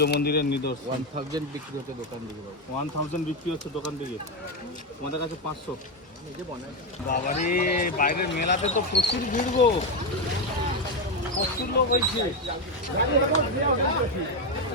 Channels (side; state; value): both; normal; correlation 0.09